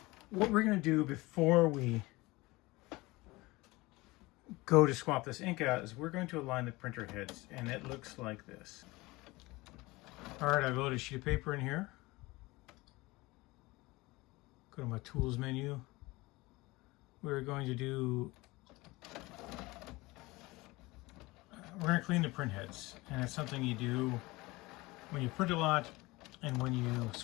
what we're going to do before we go to swap this ink out is we're going to align the printer heads, and it looks like this. Alright, I've loaded a sheet of paper in here. Go to my tools menu. We're going to clean the print heads, and it's something you do when you print a lot and when you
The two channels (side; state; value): right; quieter; 21.8 dB